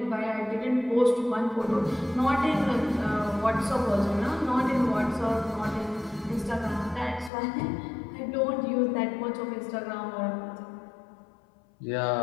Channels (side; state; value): right; drops out; at 7.3 s